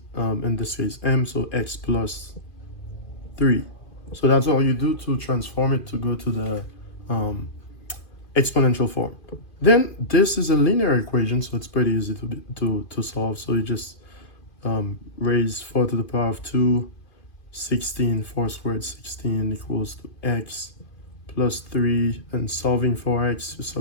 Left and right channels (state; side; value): late; right; 2.5 ms